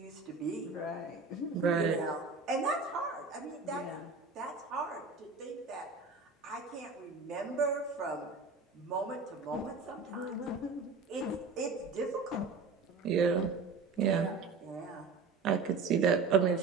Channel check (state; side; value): quieter; left; 4.3 dB